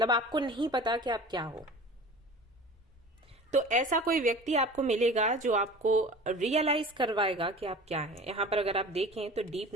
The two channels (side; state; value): both; normal; correlation 0.40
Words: आपको नहीं पता कि आप क्या हो। तो ऐसा कोई व्यक्ति आपको मिलेगा जो आपको रियलाइज करवाएगा कि आप क्या हैं। यहां पर अगर आप देखें तो डीप